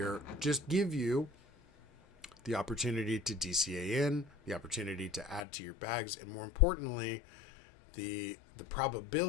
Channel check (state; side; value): drops out; right; at 5.4 s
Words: just give you the opportunity to DCA in, the opportunity to add to your bags, and more importantly, the